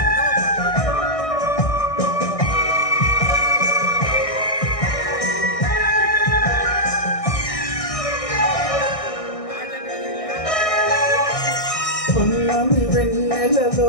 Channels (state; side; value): late; right; 1.6 ms